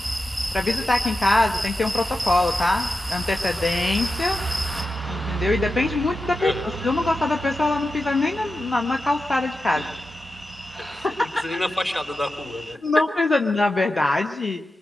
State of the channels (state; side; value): normal; both; correlation 0.91